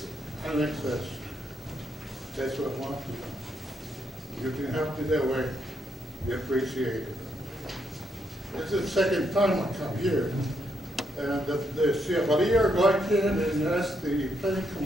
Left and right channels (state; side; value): normal; both; correlation 0.77